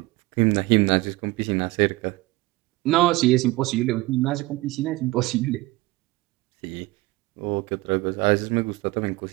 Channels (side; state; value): left; quieter; 20.8 dB